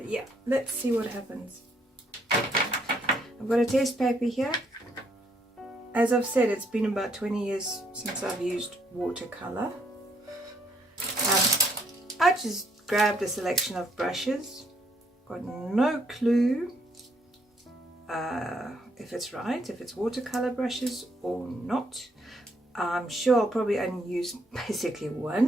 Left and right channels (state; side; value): normal; both; correlation 0.70